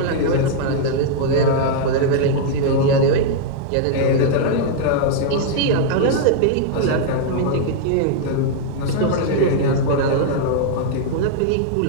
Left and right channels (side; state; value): both; different; correlation -0.01